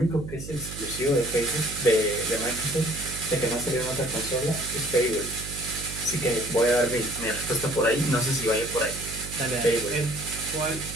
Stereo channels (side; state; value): right; noise; hum, 11 dB below the sound